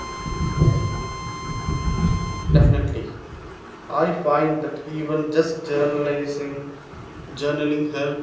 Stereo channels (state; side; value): identical; both; correlation 1.00